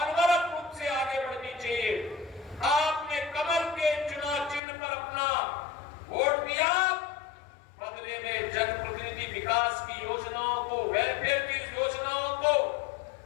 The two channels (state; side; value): drops out; right; at 4.6 s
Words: रूप से आगे बढ़नी चाहिए। आपने कमल के चुनाव चिन्ह पर अपना वोट दिया, बदले में जनप्रतिनिधि विकास की योजनाओं को, वेलफेयर की योजनाओं को